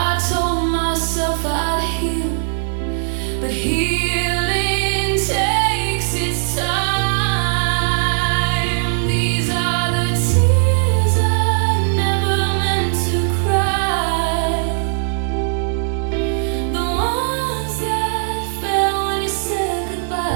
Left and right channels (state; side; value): silent; left; 59 dB below the other